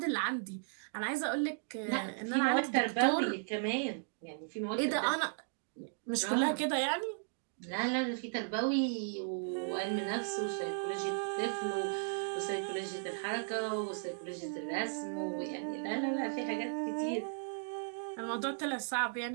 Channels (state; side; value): silent; left; digital silence